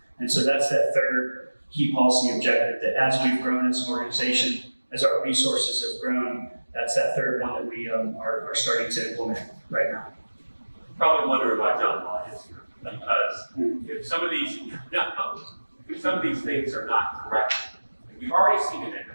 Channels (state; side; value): inverted; both; correlation -1.00